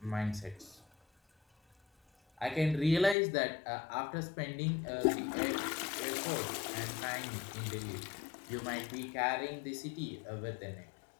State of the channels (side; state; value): right; drops out; at 3.2 s